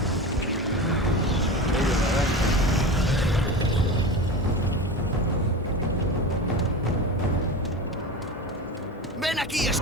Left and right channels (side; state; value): both; normal; correlation 0.27